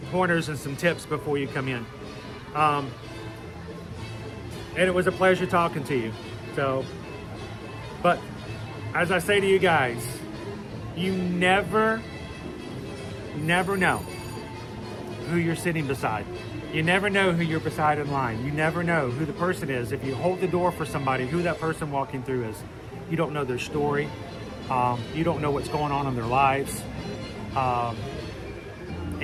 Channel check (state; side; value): identical; both; correlation 1.00